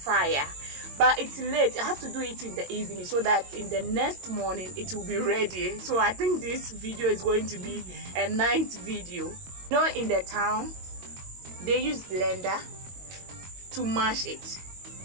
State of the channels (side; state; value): left; late; 22 ms